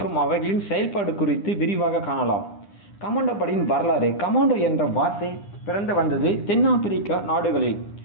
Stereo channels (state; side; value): late; right; 9.9 ms